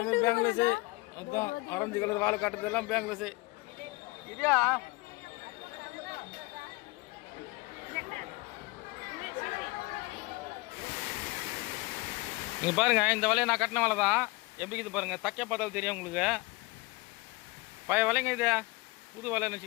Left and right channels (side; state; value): right; quieter; 23.9 dB